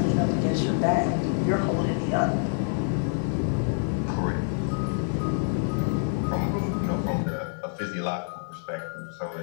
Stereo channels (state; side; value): silent; right; 60 dB below the other